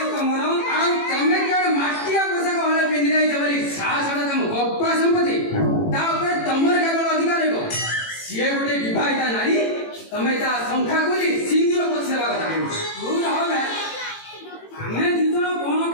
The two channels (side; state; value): right; late; 18 ms